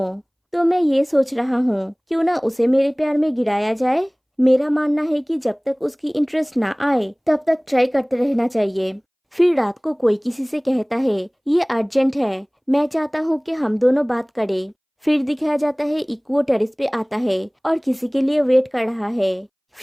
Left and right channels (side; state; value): both; identical; correlation 1.00